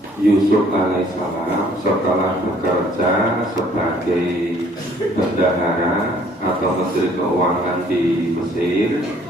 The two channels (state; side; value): normal; both; correlation 0.59